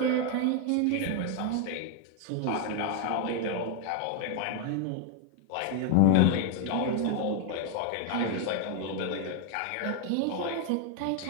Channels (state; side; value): different; both; correlation 0.01